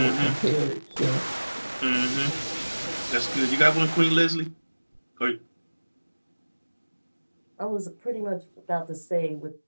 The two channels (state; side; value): inverted; both; correlation -1.00